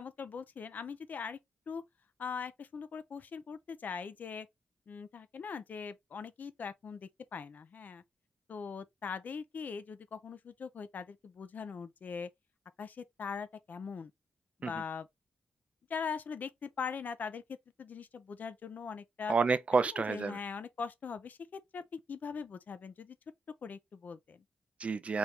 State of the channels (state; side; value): normal; both; correlation 0.77